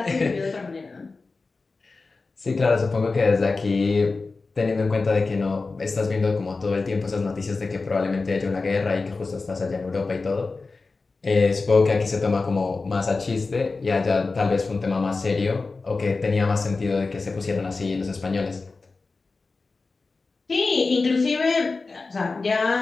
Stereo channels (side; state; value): right; quieter; 3.9 dB